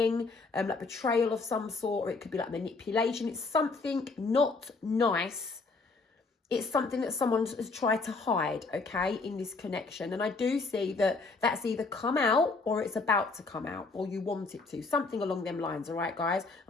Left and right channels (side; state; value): right; quieter; 3.9 dB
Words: of some sort, or it could be like manipulation. It's something not nice. It's something that someone has tried to hide, okay, in this connection. And I do see that that's either come out or it's about to come out, or you want it to. Something along them lines, all right, guys?